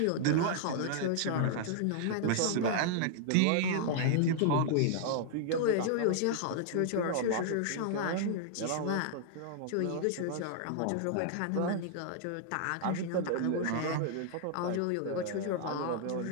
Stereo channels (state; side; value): different; both; correlation -0.01